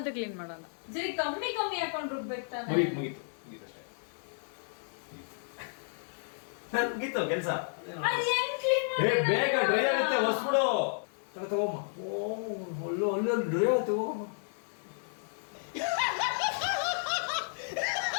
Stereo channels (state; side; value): silent; right; digital silence